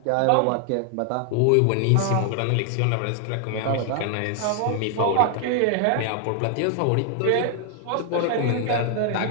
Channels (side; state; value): both; different; correlation 0.00